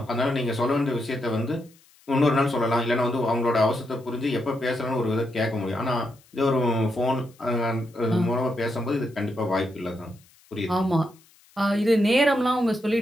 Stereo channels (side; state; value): left; noise; hiss, 30 dB below the sound